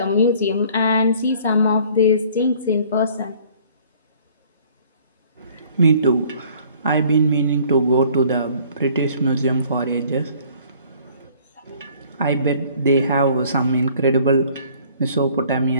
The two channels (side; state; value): both; inverted; correlation -0.55